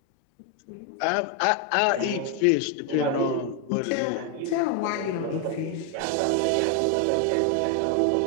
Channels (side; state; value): both; different; correlation 0.01